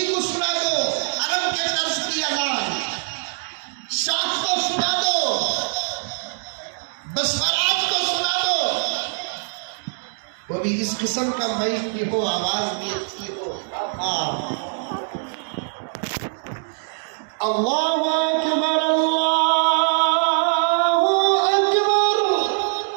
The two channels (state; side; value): silent; left; digital silence